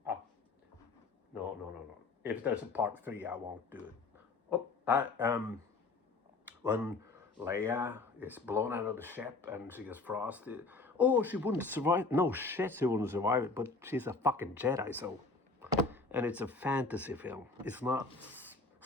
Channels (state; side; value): quieter; right; 3.8 dB